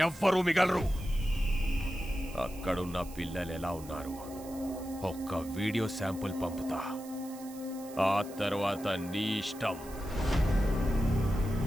ఎవ్వరూ మిగలరు. అక్కడున్న పిల్లలు ఎలా ఉన్నారు ఒక్క వీడియో శాంపుల్ పంపుతా. ఆ తర్వాత నీ ఇష్టం.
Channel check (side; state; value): right; noise; hiss, 18 dB below the sound